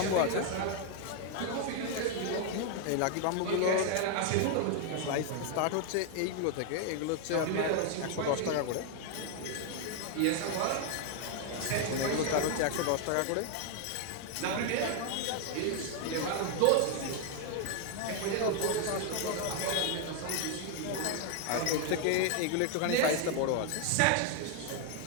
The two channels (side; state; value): both; different; correlation 0.01